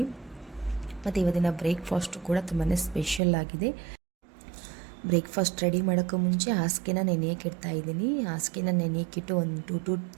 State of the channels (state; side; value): drops out; left; at 3.2 s